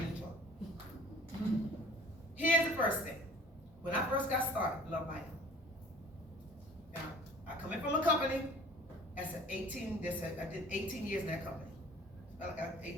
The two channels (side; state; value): both; normal; correlation 0.49